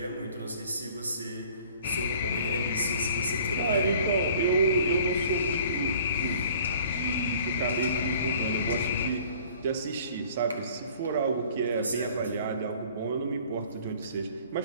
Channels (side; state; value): both; inverted; correlation -0.51